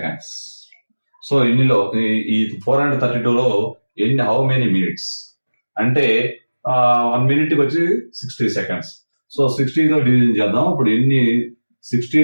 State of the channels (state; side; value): inverted; both; correlation -1.00